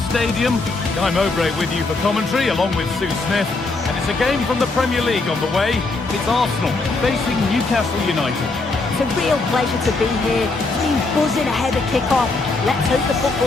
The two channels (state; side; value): quieter; right; 3.5 dB